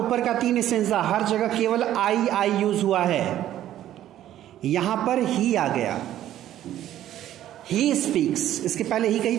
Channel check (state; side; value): quieter; left; 12.4 dB